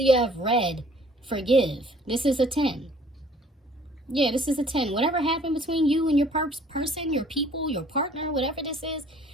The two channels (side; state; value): both; normal; correlation 0.56